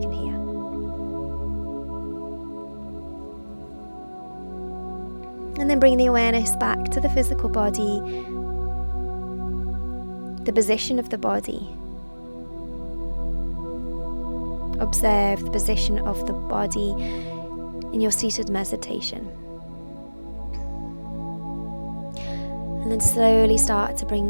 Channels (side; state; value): both; inverted; correlation -1.00